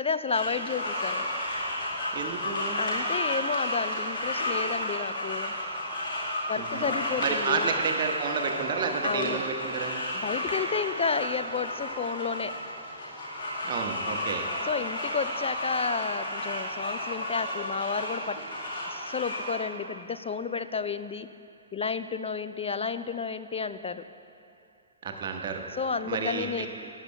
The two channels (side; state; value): both; inverted; correlation -0.44